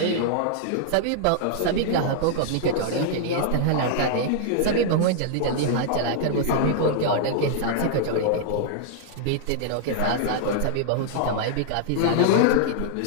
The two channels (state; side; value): different; both; correlation -0.01